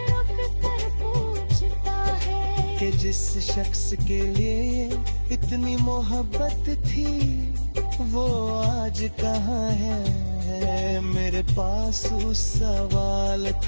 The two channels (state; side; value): inverted; both; correlation -1.00